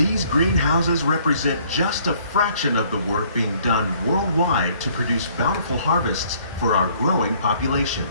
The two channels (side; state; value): both; inverted; correlation -0.60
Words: greenhouses represent just a fraction of the work being done worldwide to produce bountiful harvests for our growing population.